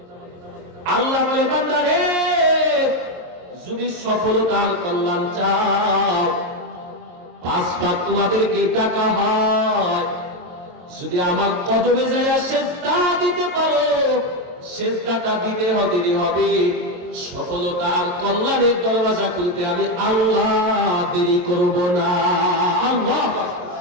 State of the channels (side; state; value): left; late; 23 ms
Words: আল্লাহ বলে, বান্দারে, যদি সফলতার কল্যাণ চাও, 5 বার তোমাদেরকে ডাকা হয়। যদি আমার কদমে যাইয়া সেজদা দিতে পারো, সেজদাটা দিতে হবে। সফলতার কল্যাণের দরওয়াজা খুলতে আমি আল্লাহ দেরি করব না। আল্লাহ,